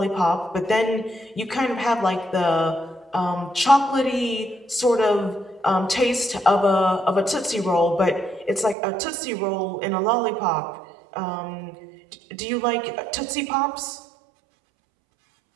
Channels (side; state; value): left; drops out; at 8.8 s